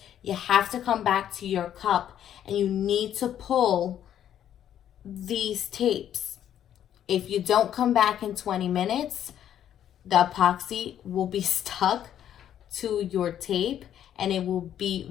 You have to come back to your cup, and you need to pull these tapes. If you don't come back in 20 minutes, the epoxy will be stuck to your tape, and it will be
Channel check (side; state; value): right; quieter; 10.4 dB